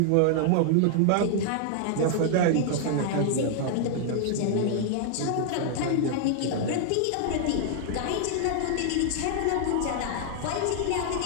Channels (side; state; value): both; different; correlation -0.01